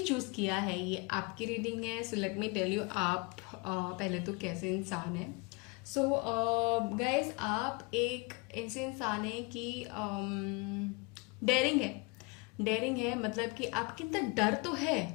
किया है, ये आपकी रीडिंग है। So let me tell you आप पहले तो कैसे इंसान है। सो गाइज, आप एक ऐसे इंसान है कि डेयरिंग है, मतलब कि आपके अंदर डर तो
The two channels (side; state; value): right; quieter; 29.2 dB